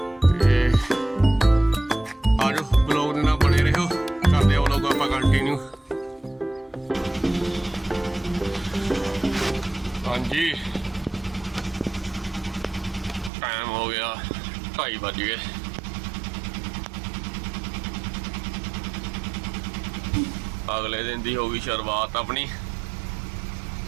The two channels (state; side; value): drops out; left; at 13.3 s